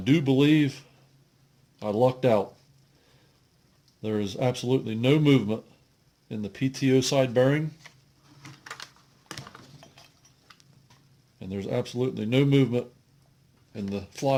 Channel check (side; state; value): both; identical; correlation 1.00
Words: believe I lucked out. There is absolutely no movement in the PTO side bearing, and there's absolutely no movement in the